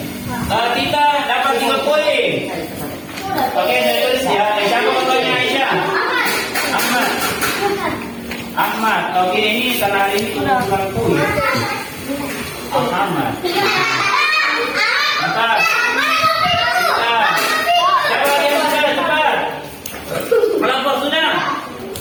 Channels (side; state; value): both; identical; correlation 1.00